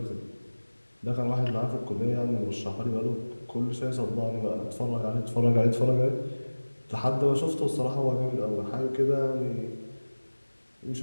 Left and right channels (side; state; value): both; inverted; correlation -1.00